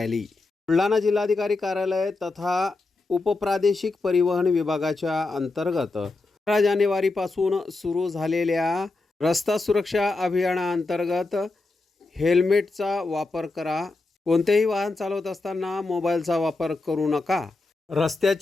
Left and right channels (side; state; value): right; quieter; 3.4 dB